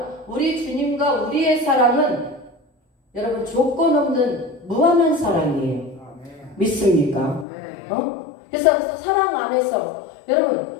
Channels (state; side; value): drops out; right; at 7.5 s